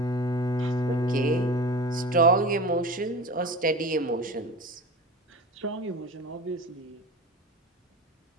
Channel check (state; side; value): normal; both; correlation 0.32